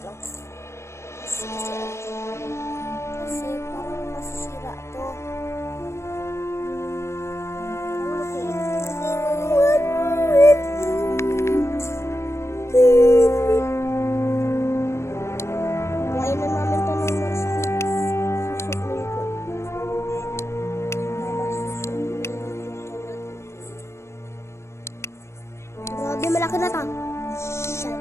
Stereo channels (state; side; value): late; right; 0.13 ms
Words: lang. Kasi parang masisira to. Buhayin na namin ito ng susunin ko. Grabe, malaki na ito.